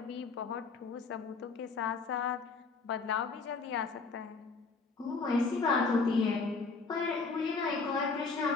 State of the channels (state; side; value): quieter; right; 4.4 dB